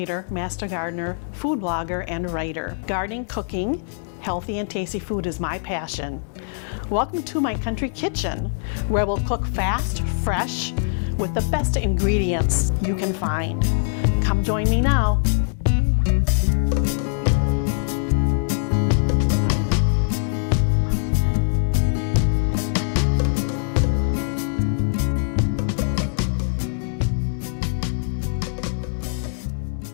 Master Gardener, food blogger, and writer. Gardening, cooking, healthy and tasty food is my passion. Welcome to my country kitchen, where we'll cook fast, fresh, with the best ingredients you can find. Come join me now.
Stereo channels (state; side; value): silent; right; digital silence